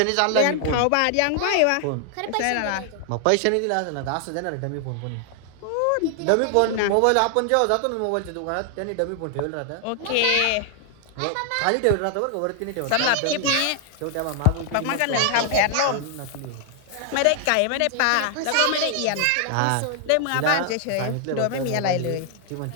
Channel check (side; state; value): both; different; correlation 0.00